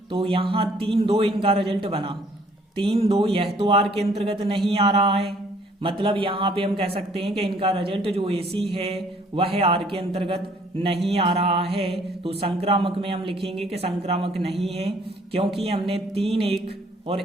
तो यहाँ 3-2 इनका रिजल्ट बना। 3-2 यह तो आर के अंतर्गत नहीं आ रहा है, मतलब यहाँ पे हम कह सकते हैं कि इनका रिजल्ट जो एसी है वह आर के अंतर्गत नहीं आ रहा है। तो संक्रामक में हम लिखेंगे कि संक्रामक नहीं है, क्योंकि हमने 3-1 और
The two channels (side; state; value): both; normal; correlation 0.61